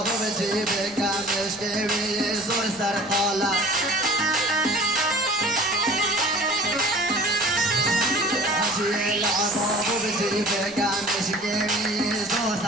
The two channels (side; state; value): left; noise; rumble, 24 dB below the sound